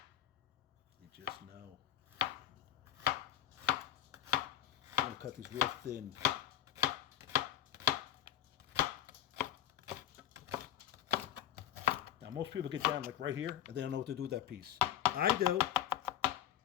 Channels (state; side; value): quieter; right; 11.4 dB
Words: You just know. cut these real thin. Now, most people get down like right here, and they don't know what to do with that piece. I do.